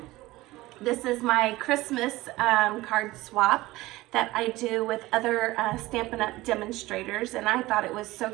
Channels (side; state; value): left; quieter; 18.7 dB